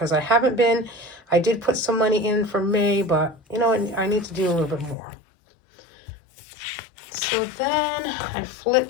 I did put some money in for May, but, you know, I need to do a little bit more. So then I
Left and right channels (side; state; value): right; drops out; at 5.0 s